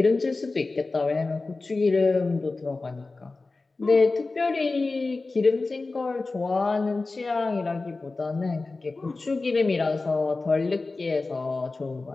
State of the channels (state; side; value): quieter; right; 3.6 dB